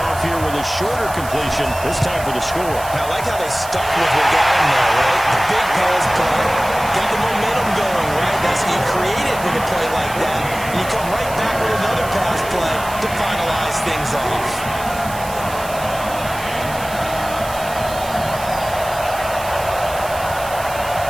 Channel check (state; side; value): noise; right; hiss, 14 dB below the sound